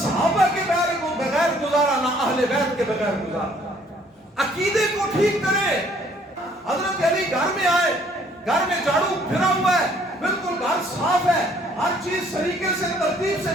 کے بغیر گزارا، نہ اہل بیت کے بغیر گزارا۔ عقیدے کو ٹھیک کریں۔ حضرت علی گھر میں آئے، گھر میں جھاڑو پھرا ہوا ہے، بالکل گھر صاف ہے، ہر چیز طریقے سے ترتیب سے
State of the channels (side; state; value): both; normal; correlation 0.62